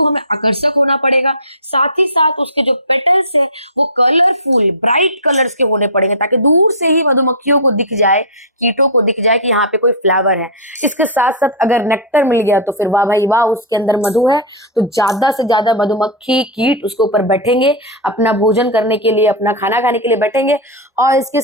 हमें आकर्षक होना पड़ेगा, साथ ही साथ उसके जो पेटल्स है वो कलरफुल, ब्राइट कलर्स के होने पड़ेंगे, ताकि दूर से ही मधुमक्खियों को दिख जाए, कीटों को दिख जाए कि यहाँ पे कोई फ्लावर है। इसके साथ साथ अगर नेक्टर मिल गया तो फिर वाह भाई वाह, उसके अंदर मधु है, तो ज्यादा से ज्यादा मधुमक्खी, कीट उसके ऊपर बैठेंगे, अपना भोजन करने के लिए, अपना खाना खाने के लिए बैठेंगे। और इसके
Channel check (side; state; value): both; normal; correlation -0.09